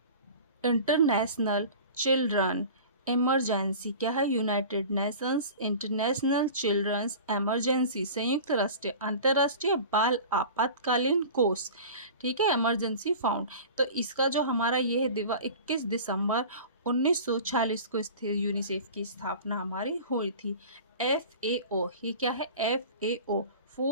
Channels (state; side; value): inverted; both; correlation -0.38